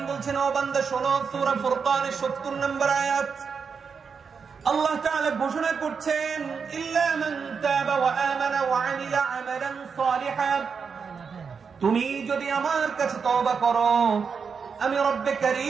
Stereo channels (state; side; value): quieter; left; 5.9 dB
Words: বলছেন, ও বান্দা শোনো, সূরা ফুরকানের ৭০ নম্বর আয়াত, আল্লাহ তাআলা ঘোষণা করছেন, ইল্লা মান তাবা ওয়া আমানা ওয়া আমিলা আমালান সালিহা। তুমি যদি আমার কাছে তওবা করো, আমি রব্বে